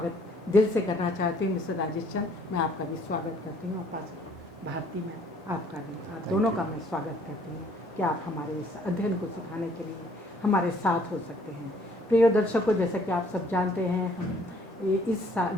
दिल से करना चाहती हूँ। मिस्टर राजेश चंद, मैं आपका भी स्वागत करती हूँ और पास्टर भारती, मैं आपका भी, आप दोनों का मैं स्वागत करती हूँ कि आप हमारे इस अध्ययन को सिखाने के लिए हमारे साथ हो सकते हैं। प्रिय दर्शकों, जैसा कि आप सब जानते हैं, हम इस साल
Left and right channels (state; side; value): normal; both; correlation 0.61